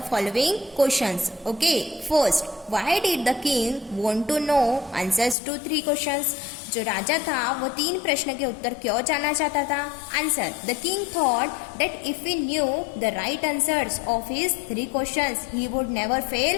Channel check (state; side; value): drops out; right; at 5.4 s